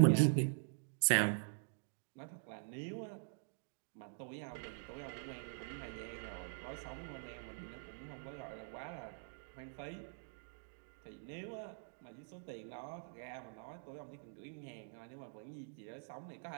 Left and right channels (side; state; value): left; silent; digital silence